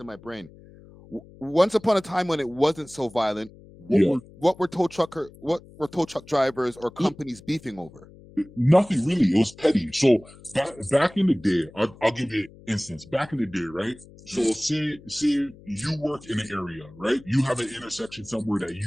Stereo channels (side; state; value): left; noise; hum, 22 dB below the sound